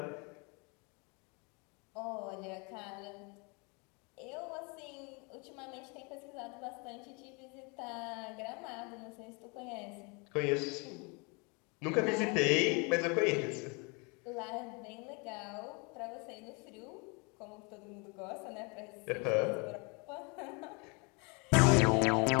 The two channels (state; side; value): quieter; right; 31.4 dB